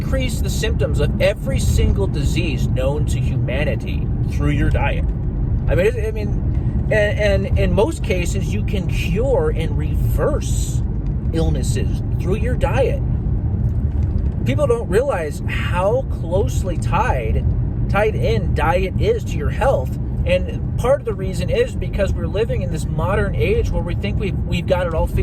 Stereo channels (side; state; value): both; identical; correlation 1.00